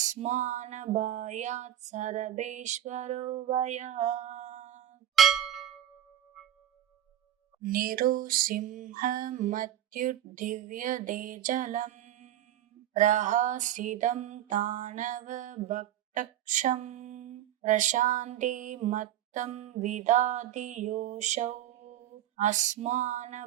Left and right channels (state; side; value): quieter; left; 11.7 dB